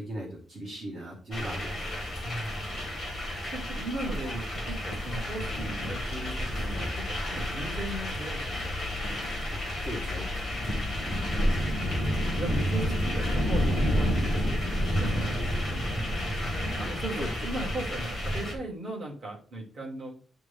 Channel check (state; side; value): normal; both; correlation 0.83